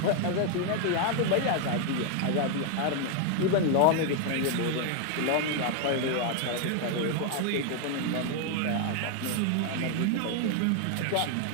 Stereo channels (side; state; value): both; different; correlation 0.01